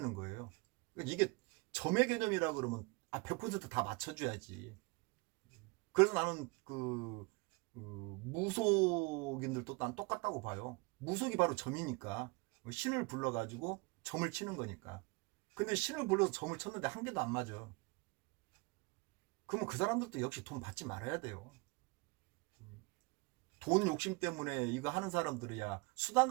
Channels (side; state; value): left; quieter; 26.5 dB